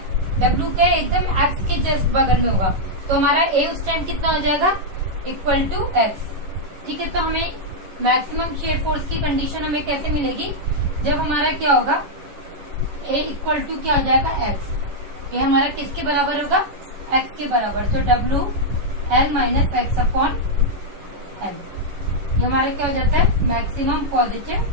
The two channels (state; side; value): late; left; 11 ms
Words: डब्ल्यू के एकदम एक्स के जस्ट बगल में होगा तो हमारा ए उस टाइम कितना हो जाएगा, इक्वल टू एक्स। ठीक है, तो हमें मैक्सिमम शेयर फोर्स की कंडीशन हमें कैसे मिलेगी, जब हमारा क्या होगा, ए इक्वल टू क्या हो जाएगा, एक्स। ये हमारा किसके बराबर होगा, एक्स के बराबर। तो W L minus x upon L, ये हमारा क्या हो जाता है, मैक्सिमम पॉजिटिव